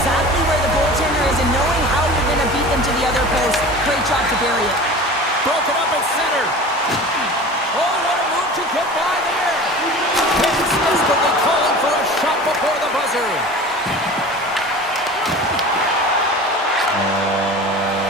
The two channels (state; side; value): normal; both; correlation 0.37